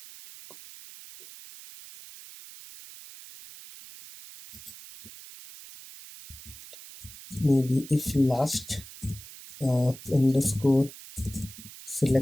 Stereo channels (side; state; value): right; noise; hiss, 17 dB below the sound